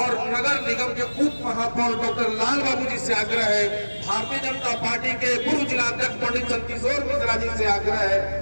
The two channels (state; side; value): inverted; both; correlation -1.00